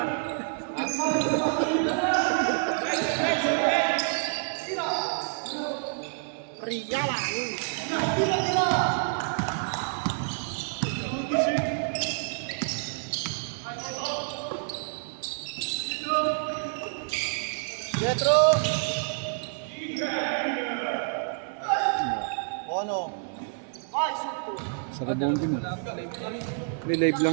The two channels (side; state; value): left; silent; 59 dB below the other